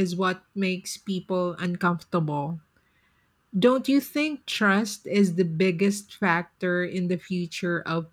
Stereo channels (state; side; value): identical; both; correlation 1.00